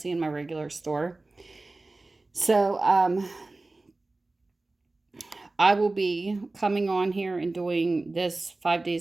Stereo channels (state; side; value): quieter; left; 3.2 dB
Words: and my regular store. So, I will be coming on here and doing this 5